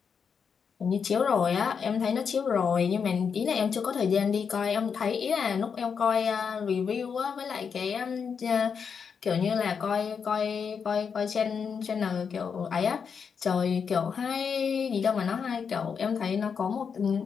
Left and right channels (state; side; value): quieter; right; 6.4 dB